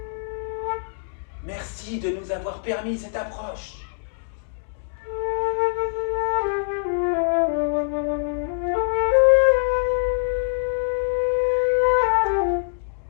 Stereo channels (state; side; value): silent; right; digital silence